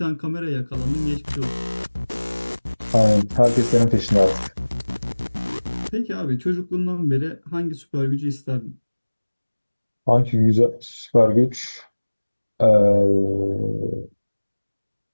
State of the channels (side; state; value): both; inverted; correlation -1.00